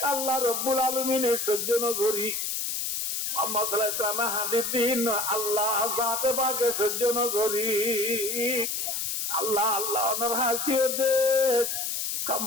আল্লাহ রাব্বুল আলামিনের সহ্য নগরী মুহাম্মদ সাল্লাল্লাহু আলাইহি ওয়াসাল্লাম হাদিস দিন আল্লাহ জাতে পাকে সহ্য নগরী আল্লাহ আল্লাহ ওনার হাসিয়তে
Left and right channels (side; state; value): left; noise; hiss, 2 dB below the sound